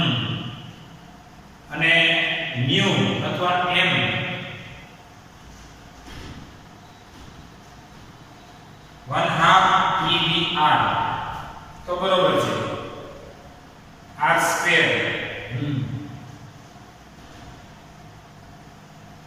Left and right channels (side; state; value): both; identical; correlation 1.00